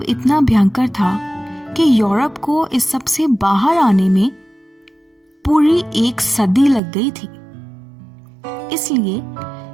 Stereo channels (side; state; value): left; drops out; at 6.8 s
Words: इतना भयंकर था कि यूरोप को इस सब से बाहर आने में पूरी 1 सदी लग गई थी। इसलिए